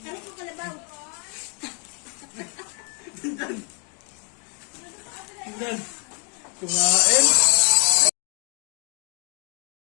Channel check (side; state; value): right; quieter; 38.1 dB